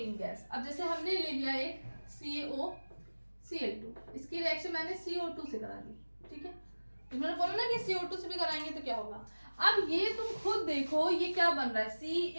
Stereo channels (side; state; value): both; inverted; correlation -1.00